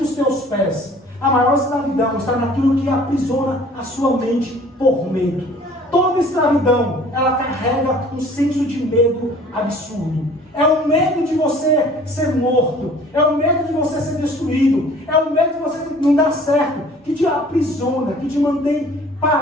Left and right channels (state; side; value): normal; both; correlation 0.51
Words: os teus pés. A maior escravidão está naquilo que aprisiona a sua mente por medo. Toda escravidão, ela carrega um senso de medo absurdo. É o medo de você ser morto, é o medo de você ser destruído, é o medo de você não dar certo, que te aprisiona, que te mantém